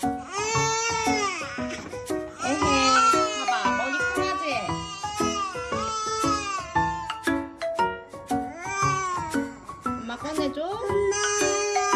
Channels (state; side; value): identical; both; correlation 1.00